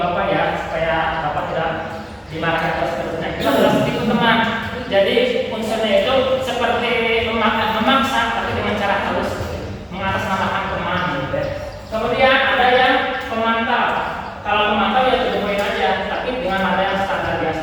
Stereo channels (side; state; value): both; identical; correlation 1.00